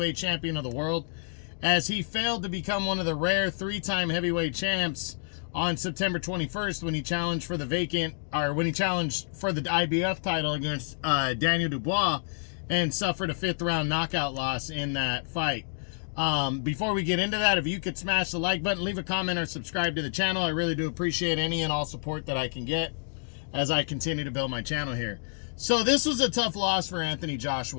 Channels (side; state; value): right; silent; digital silence